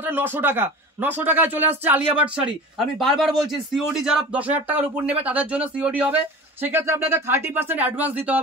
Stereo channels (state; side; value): normal; both; correlation 0.36